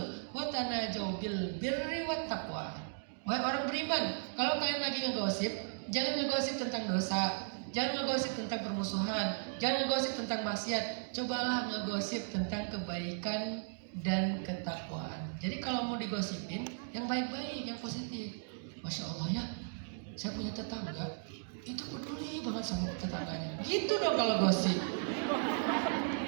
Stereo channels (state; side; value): silent; left; digital silence